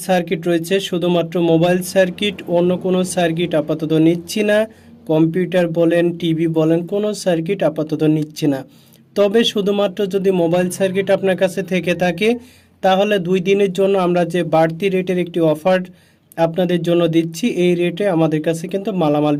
সার্কিট রয়েছে। শুধুমাত্র মোবাইল সার্কিট, অন্য কোনো সার্কিট আপাতত নিচ্ছি না। কম্পিউটার বলেন, টিভি বলেন, কোনো সার্কিট আপাতত নিচ্ছি না। তবে শুধুমাত্র যদি মোবাইল সার্কিট আপনার কাছে থেকে থাকে তাহলে 2 দিনের জন্য আমরা যে বাড়তি রেটের একটি অফার আপনাদের জন্য দিচ্ছি, এই রেটে আমাদের কাছে কিন্তু মালামাল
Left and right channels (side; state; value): both; identical; correlation 1.00